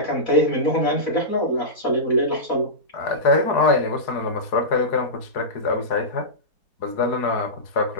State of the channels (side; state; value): right; late; 4.7 ms